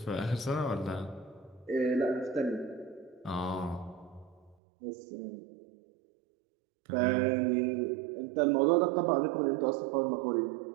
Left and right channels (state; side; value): drops out; left; at 4.5 s